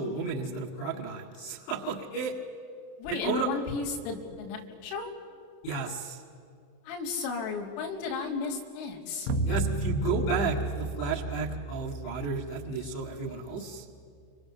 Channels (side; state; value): right; late; 31 ms